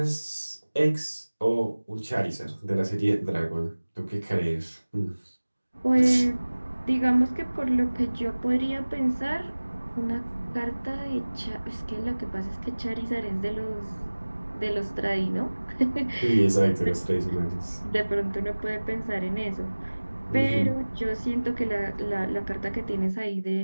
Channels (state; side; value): inverted; both; correlation -1.00